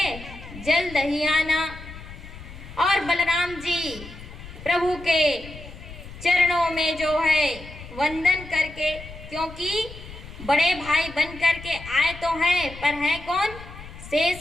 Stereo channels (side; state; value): left; noise; rumble, 15 dB below the sound